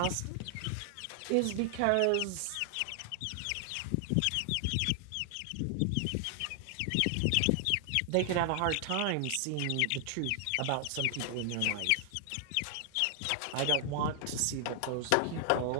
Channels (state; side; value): different; both; correlation 0.00